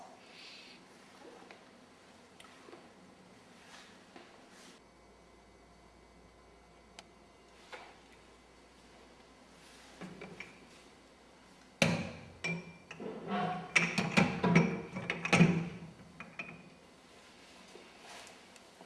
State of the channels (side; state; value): both; identical; correlation 1.00